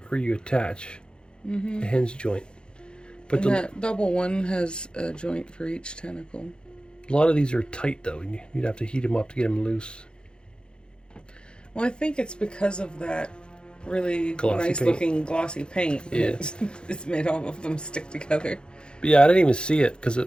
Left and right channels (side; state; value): right; late; 0.050 ms